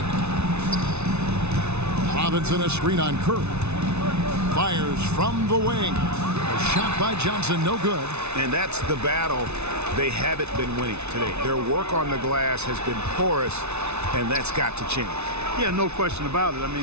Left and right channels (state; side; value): late; left; 0.81 ms